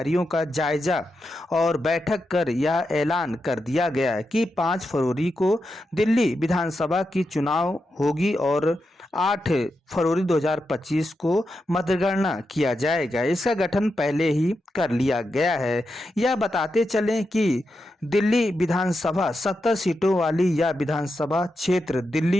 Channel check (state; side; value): normal; both; correlation 0.87